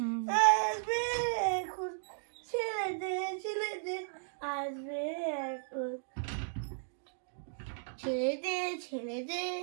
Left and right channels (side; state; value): left; silent; digital silence